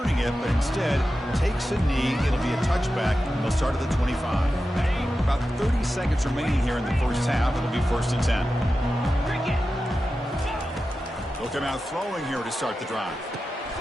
it, but instead takes a knee. It'll be a touchback. They'll start at the 25. About 30 seconds remaining here in the first half. It'll be 1st and 10. They'll come out throwing here to start the drive.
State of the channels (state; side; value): normal; both; correlation 0.92